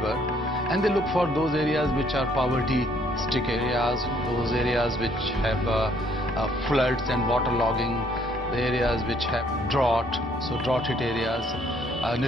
and they look for those areas which are poverty-stricken areas, those areas which have floods and waterlogging, the areas which have drought, so drought-hit areas,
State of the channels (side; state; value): both; normal; correlation 0.65